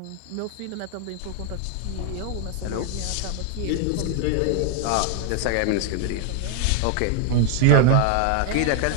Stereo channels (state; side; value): different; both; correlation 0.00